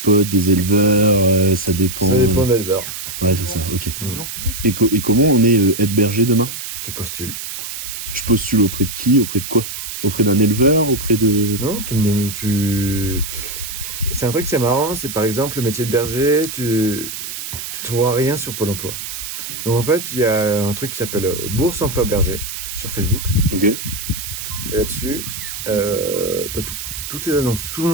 des éleveurs, ça dépend... Ça dépend de l'éleveur. Ouais, c'est ça, ok. Mm. Et comment on est aide berger demain? Tu postules. Je postule auprès de qui? Auprès de quoi? Auprès d'un éleveur? Auprès de... Non, c'est un truc, c'est marrant, c'est par exemple le métier de berger, tu trouveras rien sur Pôle emploi. Donc en fait, il y a un truc qui s'appelle Bourse Emploi Berger sur Facebook. Ok. Et là-dessus, t'as toutes tes annonces. Tout le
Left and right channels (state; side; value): noise; right; hiss, 7 dB below the sound